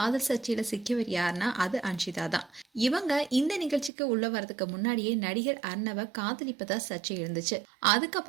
சர்ச்சையில சிக்கியவர் யாருன்னா அது அன்ஷிதா தான். இவங்க இந்த நிகழ்ச்சிக்கு உள்ள வரதுக்கு முன்னாடியே நடிகர் அர்ணவ காதலிப்பதா சர்ச்சை இருந்துச்சு.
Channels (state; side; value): drops out; left; at 3.9 s